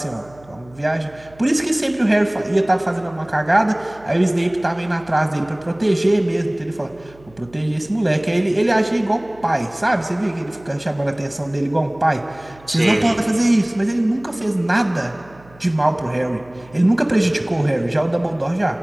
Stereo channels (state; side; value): noise; right; hum, 25 dB below the sound